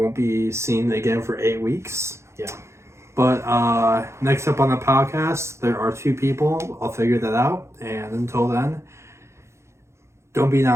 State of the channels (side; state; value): left; late; 0.13 ms